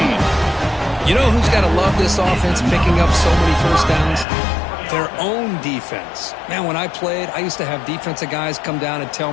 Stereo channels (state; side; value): drops out; right; at 4.2 s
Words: You know who's got to love this offense picking up so many first downs? Their own defense. Man, when I played, I used to have defensive guys come down and tell